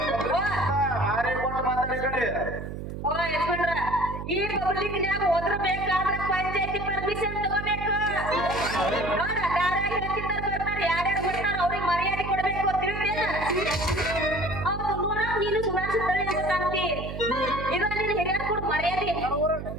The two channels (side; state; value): right; noise; hum, 7 dB below the sound